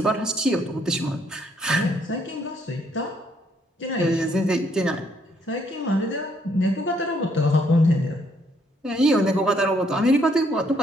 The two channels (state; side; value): normal; both; correlation 0.69